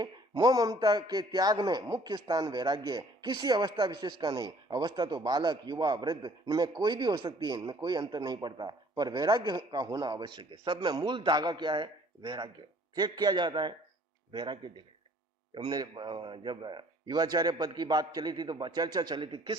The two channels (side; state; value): both; normal; correlation 0.56